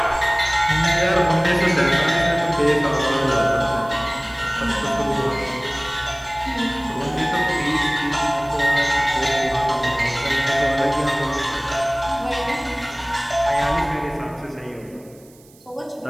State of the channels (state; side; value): noise; right; hiss, 27 dB below the sound